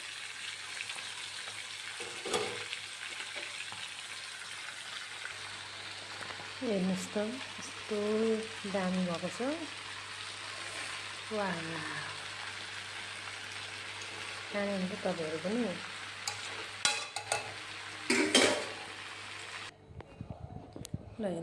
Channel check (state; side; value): identical; both; correlation 1.00